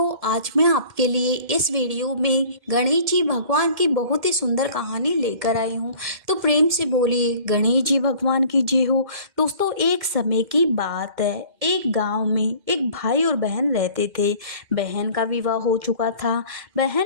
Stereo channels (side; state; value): left; late; 1.7 ms